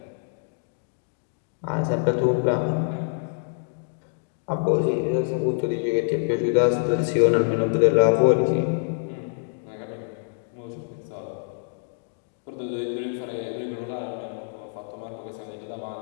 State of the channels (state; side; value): silent; right; digital silence